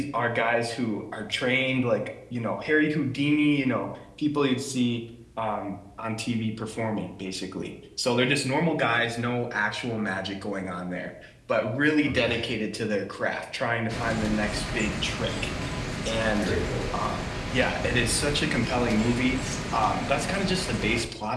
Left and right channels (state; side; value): identical; both; correlation 1.00